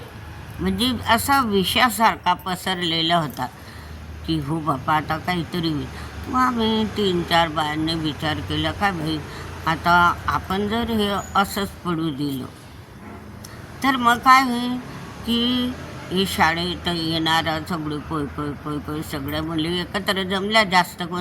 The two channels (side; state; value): both; identical; correlation 1.00